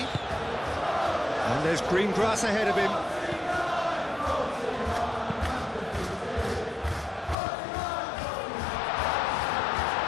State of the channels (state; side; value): drops out; right; at 7.4 s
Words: And there's green grass ahead of him.